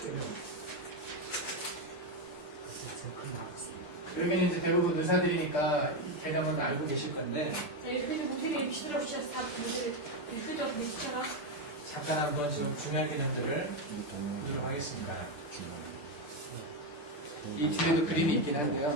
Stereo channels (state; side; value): late; right; 6.8 ms